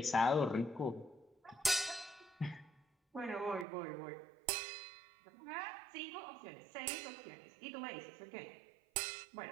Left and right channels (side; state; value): left; drops out; at 3.7 s